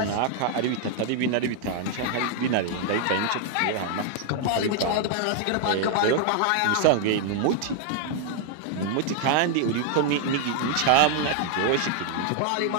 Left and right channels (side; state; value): both; different; correlation 0.00